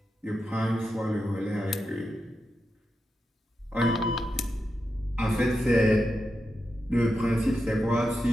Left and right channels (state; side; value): normal; both; correlation 0.88